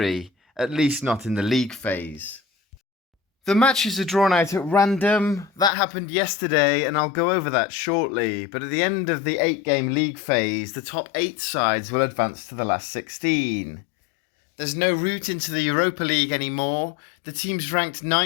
at least not in the league phase. The matches are drawn out at random. That happened yesterday, and I'll go over that shortly. But at the end of the 8-game league phase, the top 8 sides will advance to the last 16. There's no route into the Europa League anymore. The teams ranked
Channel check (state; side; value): drops out; right; at 5.7 s